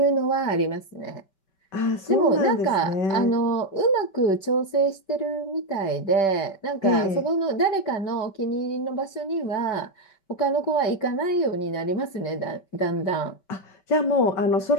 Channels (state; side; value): late; right; 5.2 ms